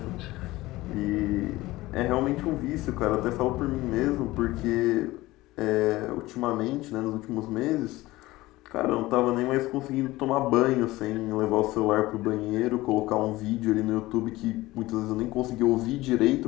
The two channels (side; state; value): right; quieter; 18.6 dB